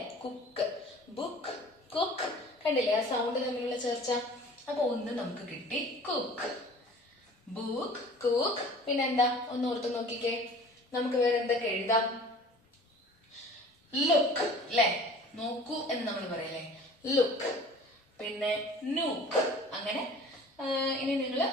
Cook, book, cook. കണ്ടില്ലേ ആ സൗണ്ട് തമ്മിലുള്ള ചർച്ച? അപ്പൊ ഒന്ന് നമുക്ക് കിട്ടി, കുക്ക്, ബുക്ക്, കുക്ക്. പിന്നെന്താ? ഒന്ന് ഓർത്ത് നോക്കിക്കേ, നമുക്ക് വേറെ എന്തൊക്കെ എഴുതാം? ലുക്ക് അല്ലെ? നോക്കൂ എന്ന് നമ്മൾ പറയല്ലേ? ലുക്ക്. പിന്നെ നൂക്ക്. അങ്ങനെ ഇനി നിങ്ങൾ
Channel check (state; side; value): normal; both; correlation 0.45